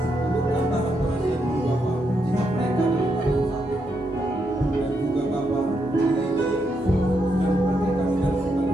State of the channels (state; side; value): normal; both; correlation 0.81